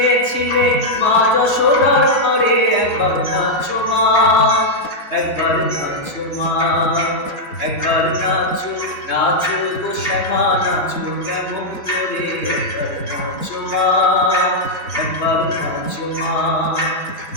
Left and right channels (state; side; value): late; right; 4.0 ms